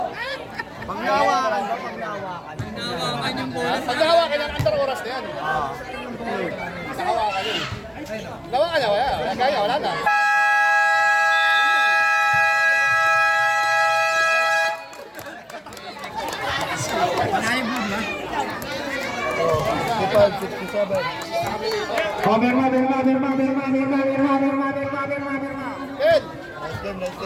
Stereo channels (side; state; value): both; identical; correlation 1.00